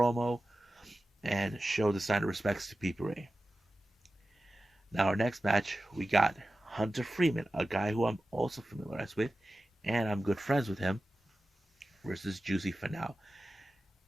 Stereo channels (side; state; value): both; normal; correlation 0.94